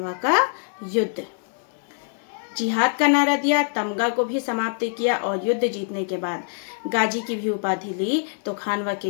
का युद्ध। जिहाद का नारा दिया, तमगा को भी समाप्त किया और युद्ध जीतने के बाद गाजी की भी उपाधि ली, तो खानवा के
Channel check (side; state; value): right; silent; 60 dB below the other